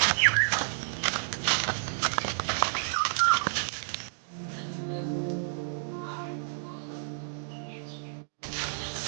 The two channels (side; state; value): left; silent; digital silence